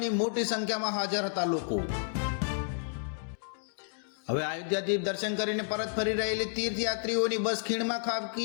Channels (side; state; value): right; silent; digital silence